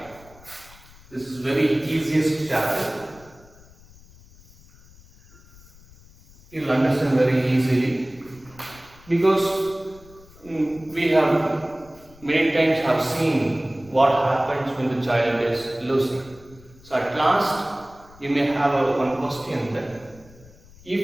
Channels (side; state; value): left; noise; rumble, 24 dB below the sound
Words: This is very easiest chapter. You will understand very easily because we have many times have seen what happens when the child is losing. So at last you may have one question then. If